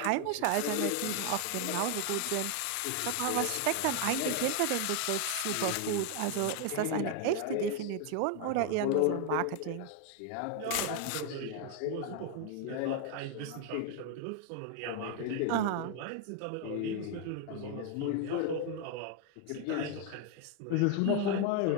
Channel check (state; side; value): different; both; correlation 0.01